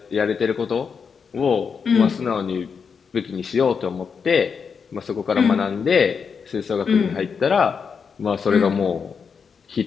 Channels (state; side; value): quieter; right; 6.1 dB